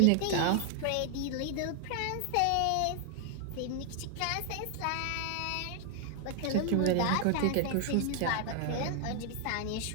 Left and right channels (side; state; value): both; different; correlation 0.00